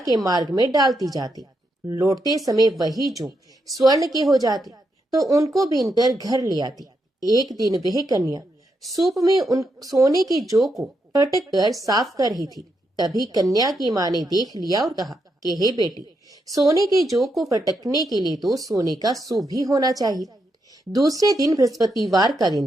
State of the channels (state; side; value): normal; both; correlation 0.82